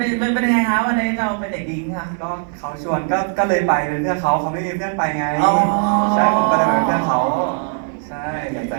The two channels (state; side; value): silent; left; 67 dB below the other